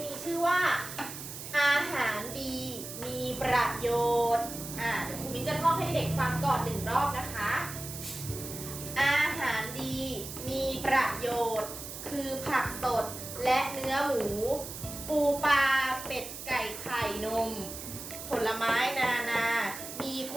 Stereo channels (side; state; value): right; noise; hiss, 10 dB below the sound